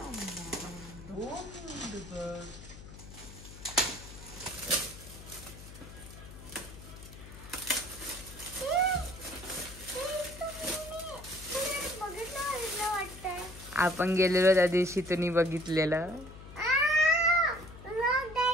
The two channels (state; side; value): noise; left; hum, 15 dB below the sound